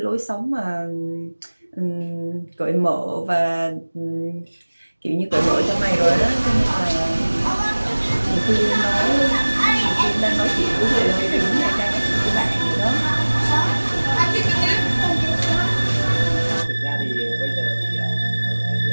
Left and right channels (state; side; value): inverted; both; correlation -1.00